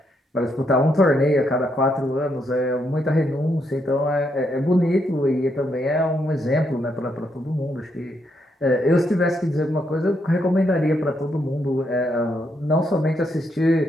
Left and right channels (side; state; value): both; normal; correlation 0.77